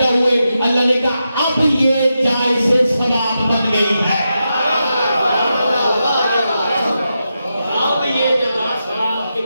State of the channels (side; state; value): both; inverted; correlation -0.87